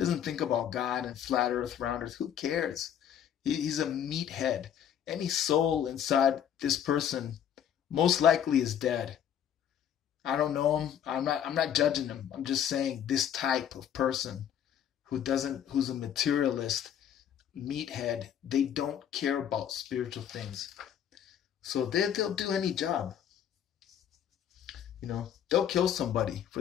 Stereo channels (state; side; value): quieter; right; 9.4 dB